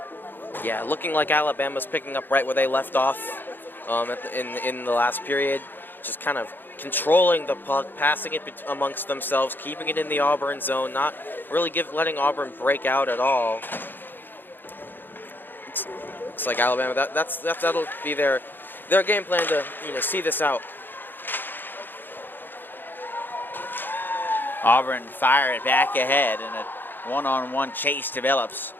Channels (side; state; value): right; late; 0.094 ms